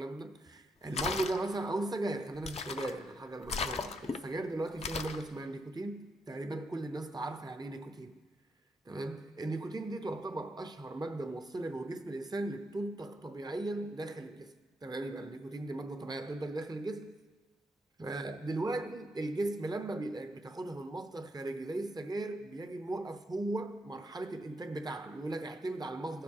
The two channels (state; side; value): normal; both; correlation 0.80